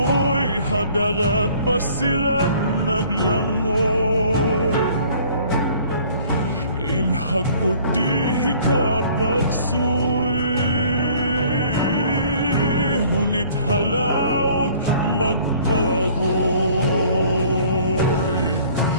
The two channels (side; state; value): both; inverted; correlation -0.54